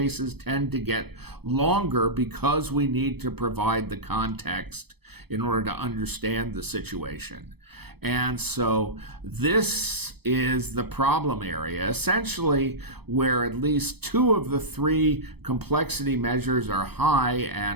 tend to get longer because we need to provide the context in order to understand the situation. And so this is the problem area, essentially where at least two of the three complexity measures are high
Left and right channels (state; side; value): late; left; 0.97 ms